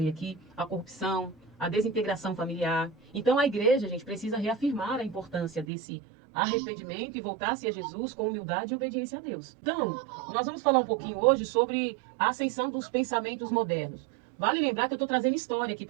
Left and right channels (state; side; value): drops out; left; at 5.7 s